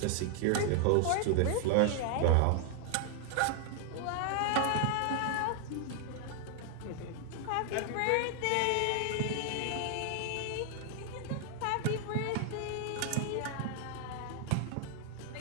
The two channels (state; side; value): different; both; correlation 0.00